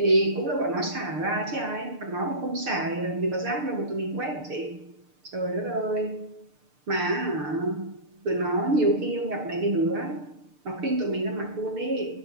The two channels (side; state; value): left; late; 6.7 ms